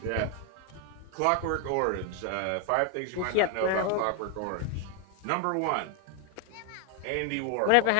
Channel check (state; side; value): different; both; correlation 0.01